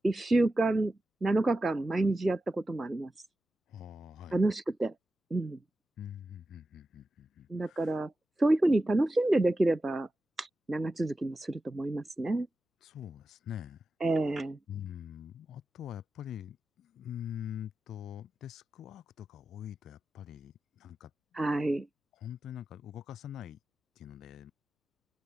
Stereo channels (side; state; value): both; normal; correlation 0.92